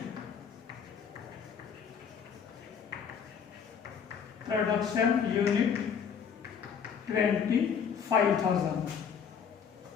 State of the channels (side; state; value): right; quieter; 7.2 dB